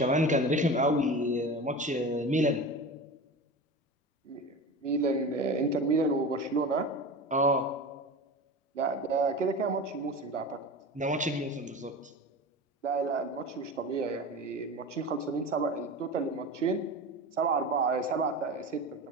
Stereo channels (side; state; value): both; normal; correlation 0.30